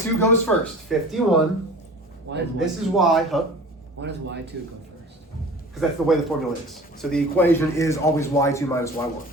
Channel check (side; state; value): both; normal; correlation 0.40